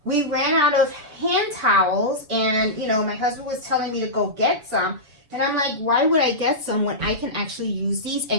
we ran out of hand towels, and my husband was telling me to go get some, and I'm like, why would I get some when I can actually use these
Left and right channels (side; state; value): left; late; 7.0 ms